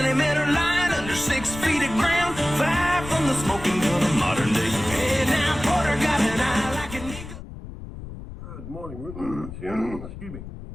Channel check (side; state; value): left; noise; rumble, 12 dB below the sound